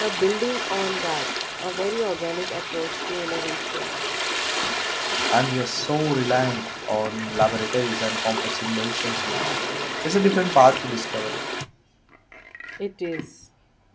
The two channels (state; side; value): identical; both; correlation 1.00